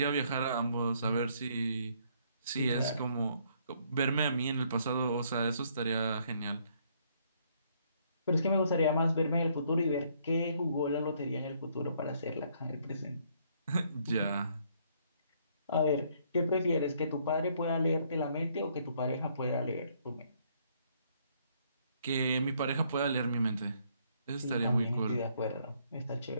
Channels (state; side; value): inverted; both; correlation -0.68